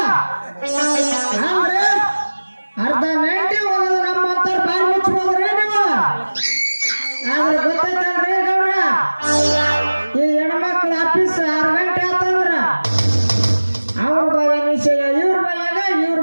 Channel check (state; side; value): inverted; both; correlation -1.00